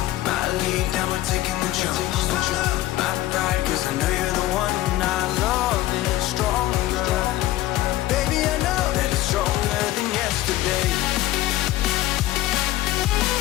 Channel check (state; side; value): quieter; right; 15.5 dB